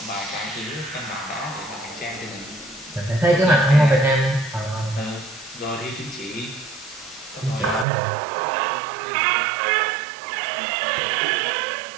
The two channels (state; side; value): drops out; left; at 7.9 s